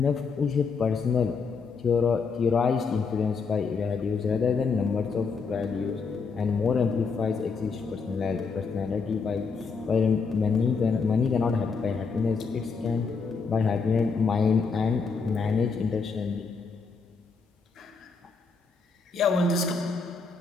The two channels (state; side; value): quieter; right; 4.9 dB